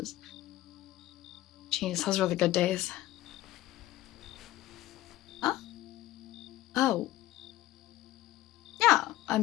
Jeez, those were the good days. Huh? Oh. Yeah,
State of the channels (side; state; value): right; quieter; 15.5 dB